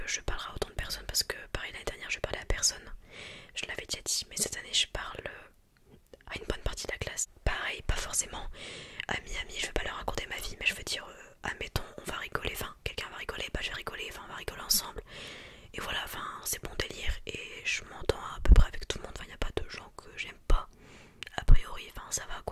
je parlerais à autant de personnes, parce que pareil l'année dernière je parlais à personne, je l'avais déjà dit, mais cette année je parle à une bonne partie de la classe. Pareil, pas forcément amis, je vais pas leur raconter ma vie, mais je veux dire, admettons on va rigoler, enfin quelqu'un va rigoler, bah je vais rigoler, enfin on va rigoler ensemble. Et voilà, enfin c'est bon délire, et je m'entends à peu près avec tout le monde, enfin il n'y a pas de gens que j'aime pas, a priori, enfin ça va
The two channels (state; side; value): identical; both; correlation 1.00